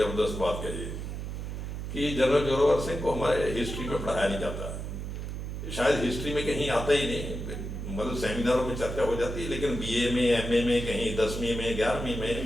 बात कही कि जनरल जोरावर सिंह को हमारे हिस्ट्री में पढ़ाया नहीं जाता। शायद हिस्ट्री में कहीं आता ही नहीं, मतलब सेमिनारों में चर्चा हो जाती है, लेकिन बीए में, एमए में, कहीं 10वीं में, 11वीं में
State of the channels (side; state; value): right; noise; hum, 6 dB below the sound